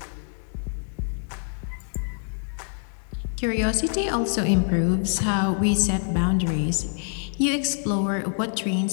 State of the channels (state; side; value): silent; right; 57 dB below the other